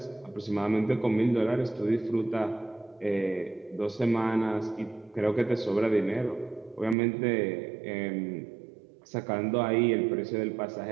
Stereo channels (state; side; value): drops out; left; at 7.0 s